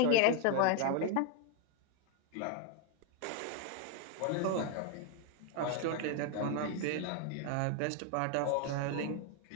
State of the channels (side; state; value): both; different; correlation 0.00